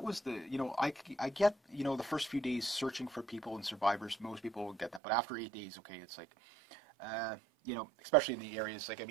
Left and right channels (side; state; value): left; drops out; at 5.0 s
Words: was I get, the first few days searching for people and survivors, most people will get that. But after 8 days, okay, it's like, especially in the areas,